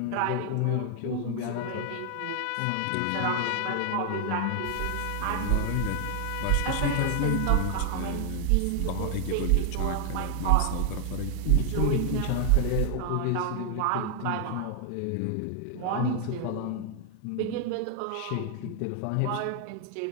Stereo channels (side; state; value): both; different; correlation 0.00